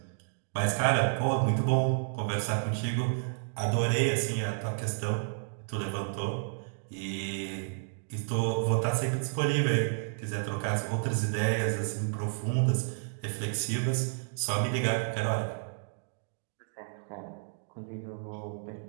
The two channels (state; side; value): silent; left; digital silence